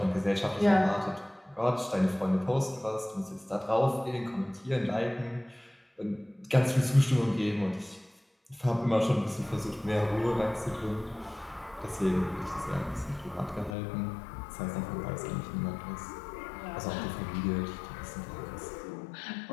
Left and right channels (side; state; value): right; drops out; at 13.8 s